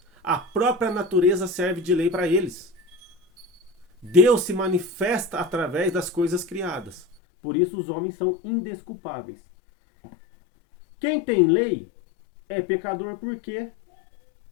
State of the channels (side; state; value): right; drops out; at 7.2 s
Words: a própria natureza serve de lei para eles. Deus se manifesta através das coisas criadas. Por isso os homens são indesculpáveis. Quem tem lei é pecador porque